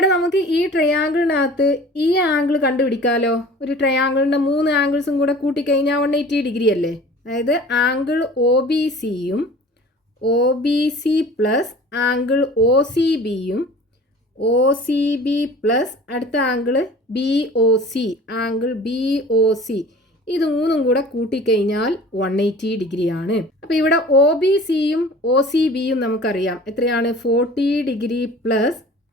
നമുക്ക് ഈ ട്രയാങ്കിളിനകത്ത് ഈ ആംഗിൾ കണ്ടുപിടിക്കാമല്ലോ. ഒരു ട്രയാങ്കിളിൻ്റെ 3 ആംഗിൾസും കൂടെ കൂട്ടിക്കഴിഞ്ഞാൽ 180 ഡിഗ്രി അല്ലേ? അതായത് ആംഗിൾ ഒ ബി സിയും O B C plus angle O C ബിയും ഒ സി ബി പ്ലസ് അടുത്ത angle B O C, angle B O C, ഇത് 3ഉം കൂടെ കൂട്ടിക്കഴിഞ്ഞാൽ 180 ഡിഗ്രിയാണ്. അപ്പോൾ ഇവിടെ ഒ ബി സിയും ഒ സി ബിയും നമുക്കറിയാം എത്രയാണ്? 40 degree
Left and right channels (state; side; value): normal; both; correlation 0.44